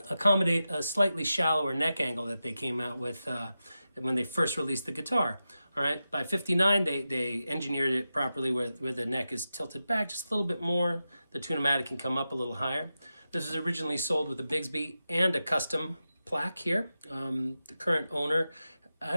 accommodate a slightly shallower neck angle that they came out with when they first released the guitar. All right, by 59, they engineered it properly where the neck is tilted back just a little bit more. The tunematic can come up a little higher. This was originally sold with a Bigsby and a custom plaque here. The current owner, I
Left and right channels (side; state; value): both; inverted; correlation -0.92